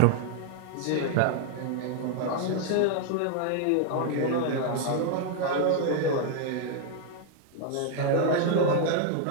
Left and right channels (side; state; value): both; different; correlation 0.00